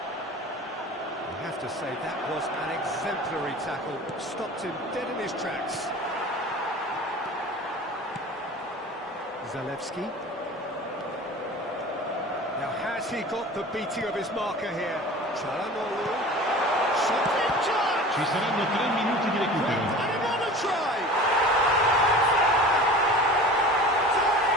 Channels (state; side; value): normal; both; correlation 0.39